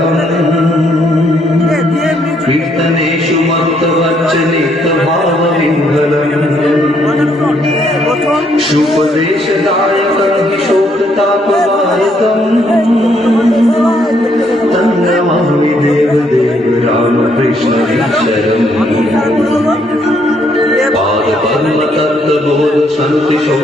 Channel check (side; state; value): both; normal; correlation 0.71